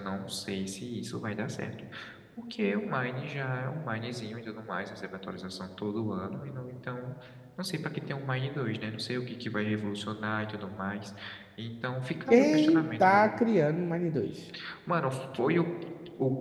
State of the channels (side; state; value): both; identical; correlation 1.00